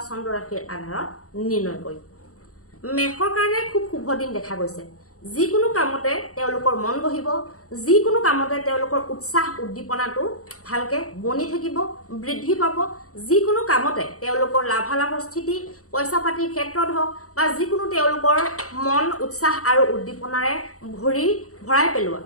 চন্দ্ৰ ৰাশিৰ আধাৰত নিৰ্ণয় কৰিম। মেষৰ কাৰণে খুব শুভ দিন দেখা গৈছে। যিকোনো কামতে তেওঁলোকৰ মন বহিব, যিকোনো কামতে তেওঁলোকৰ উৎসাহ উদ্দীপনাটো ভালকে বনি থাকিব, বৃদ্ধি পাব। যিকোনো কামতে তেওঁলোকৰ লাভালাভৰ স্থিতি পইচা পাতিৰ ক্ষেত্ৰত হওক বা যিকোনো তেওঁলোকৰ মন উৎসাহ আৰু উদ্দীপনাৰে ভৰাই পেলোৱা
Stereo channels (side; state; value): right; late; 0.65 ms